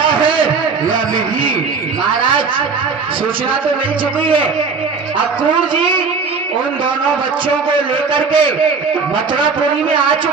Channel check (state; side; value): quieter; left; 5.0 dB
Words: है या नहीं। महाराज सूचना तो मिल चुकी है, अक्रूर जी उन दोनों बच्चों को लेकर के मथुरापुरी में आ